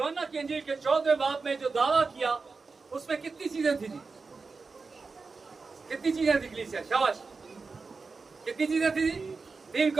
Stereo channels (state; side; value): quieter; left; 4.4 dB